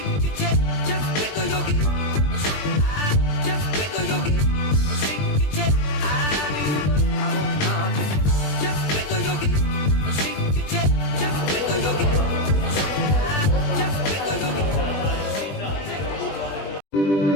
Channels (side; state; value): right; late; 20 ms